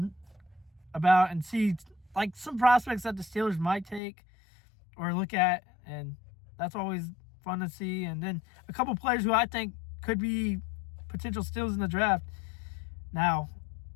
about, and see some prospects that the Steelers might take or look at, and that's always fun to see. And then a couple players who I think could be potential steals in the draft. Now,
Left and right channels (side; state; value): right; drops out; at 4.0 s